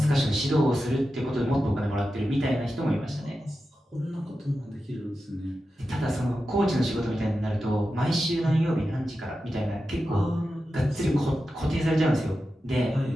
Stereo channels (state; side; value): normal; both; correlation 0.91